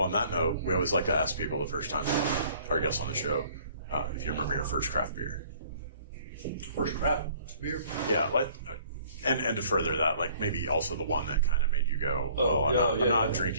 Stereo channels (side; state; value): both; inverted; correlation -0.55